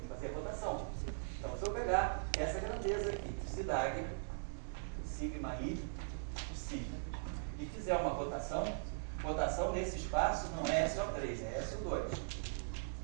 fazer a rotação. Então, se eu pegar essa grandeza aqui, psi dagger, sigma i, psi, e fizer uma rotação nesse espaço não é SO3, é SO2.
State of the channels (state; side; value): silent; left; digital silence